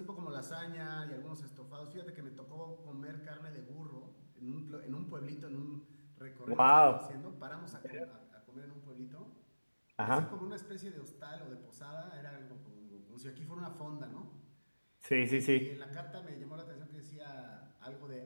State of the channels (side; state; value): both; inverted; correlation -1.00